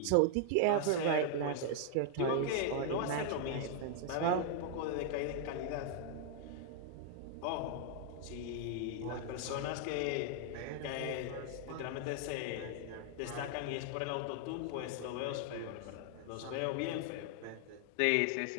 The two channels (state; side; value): different; both; correlation 0.00